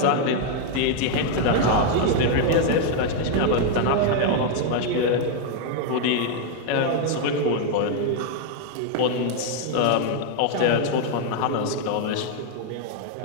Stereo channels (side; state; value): both; different; correlation 0.00